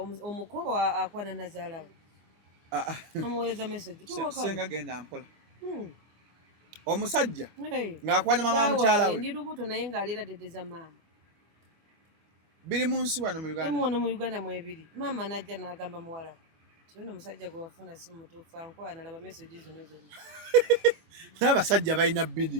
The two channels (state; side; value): late; left; 25 ms